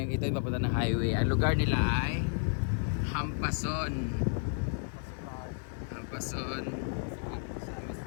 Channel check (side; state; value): right; silent; digital silence